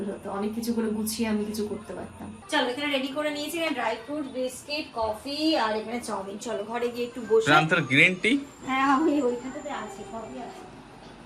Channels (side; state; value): both; identical; correlation 1.00